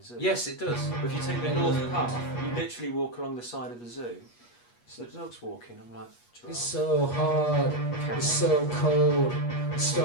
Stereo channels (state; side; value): late; right; 8.3 ms